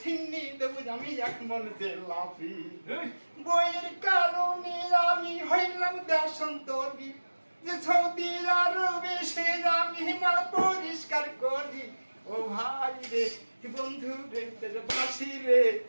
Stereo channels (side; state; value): both; inverted; correlation -1.00